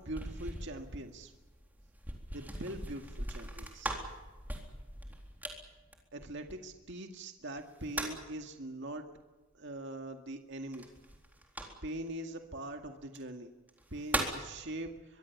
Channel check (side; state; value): both; normal; correlation 0.39